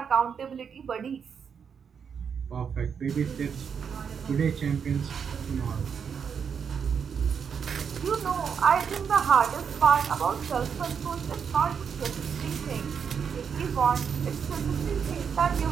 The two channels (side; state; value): left; quieter; 6.9 dB